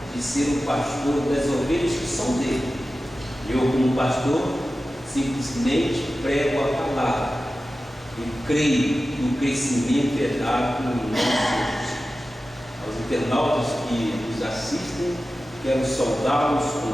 de ser o pastor das ovelhas que são dele. Eu, como pastor, simplesmente prego a palavra e creio no crescimento dado no nome de Jesus. Aos internautas que nos assistem, quero saudá-los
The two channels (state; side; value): normal; both; correlation 0.94